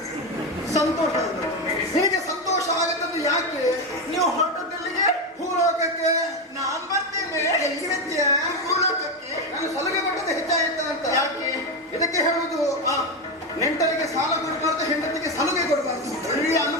ಸಂತೋಷ. ನಿನಗೆ ಸಂತೋಷ ಆಗತ್ತದ್ದು ಯಾಕೆ? ನೀವು ಹೊರಟದ್ದೆಲ್ಲಿಗೆ? ಭೂಲೋಕಕ್ಕೆ. ನಾನ್ ಬರ್ತೇನೆ. ಎಲ್ಲಿರ್ತೀಯ? ಭೂಲೋಕಕ್ಕೆ. ನಾನು ಸಲುಗೆ ಕೊಟ್ಟದ್ದು ಹೆಚ್ಚಾಯಿತ ಅಂತ. ಯಾಕೆ? ಇದಕ್ಕೆ ಹೇಳುವುದು ನೆಂಟರಿಗೆ ಸಾಲ ಕೊಡಬಾರ್ದು, ಹೆಂಡತಿಗೆ ಸಲುಗೆ ಕೊಡಬಾರ್ದು. ಒಳ್ಳೆಯ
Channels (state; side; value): normal; both; correlation 0.12